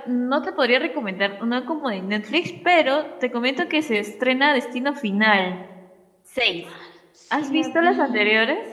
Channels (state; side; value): identical; both; correlation 1.00